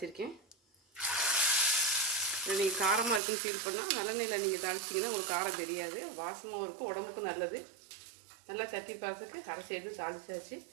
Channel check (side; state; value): left; drops out; at 3.2 s